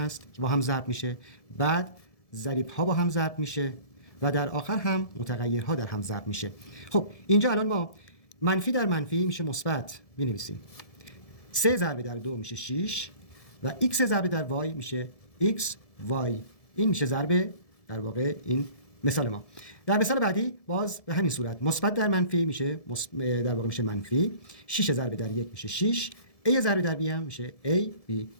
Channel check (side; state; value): right; late; 1.7 ms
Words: که با هم ضرب میشه، بعد ضریب‌ها با هم ضرب میشه و در آخر هم متغیرها در هم ضرب میشه. خب اینجا الان ما منفی در منفی میشه مثبت می‌نویسیم. 3 ضرب در 2 میشه 6 و x ضرب در y میشه x y. این میشه ضرب در واقع این مثال ما. در مثال بعدی باز به همین صورت مثبت در منفی میشه در واقع میشه منفی. 6 ضرب در 1 میشه 6. a ضرب در b هم میشه a b.